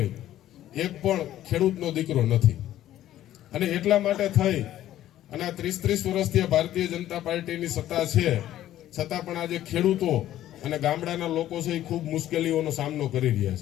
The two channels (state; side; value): quieter; right; 13.0 dB